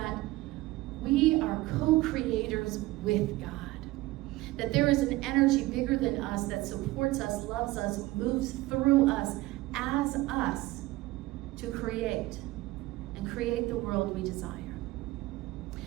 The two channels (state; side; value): quieter; left; 18.8 dB